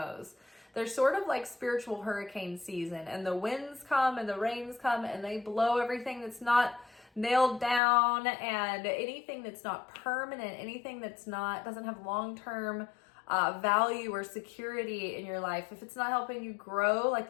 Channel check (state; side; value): drops out; right; at 7.8 s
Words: They're sort of like spiritual hurricane season, and the winds come and the rains come and they blow everything that's not nailed down, and anything that's not permanent, anything that's doesn't have long-term value or security in your life. If it's not helping you grow, like